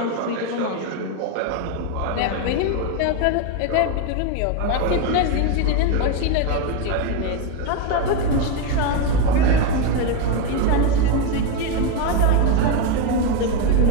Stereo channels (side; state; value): both; different; correlation 0.03